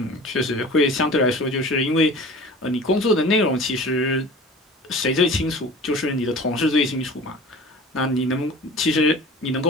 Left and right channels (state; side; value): normal; both; correlation 0.40